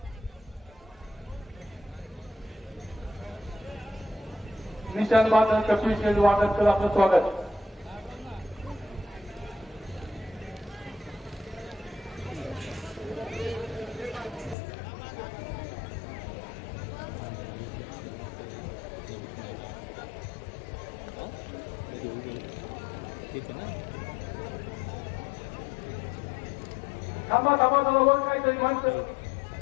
निशान बादल कपिल शेठ वादळकर आपलं स्वागत थांबा थांबा जवळ काहीतरी माणसं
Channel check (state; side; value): drops out; right; at 14.6 s